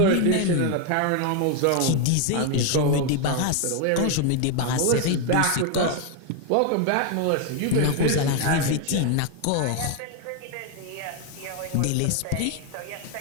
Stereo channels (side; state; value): both; different; correlation 0.01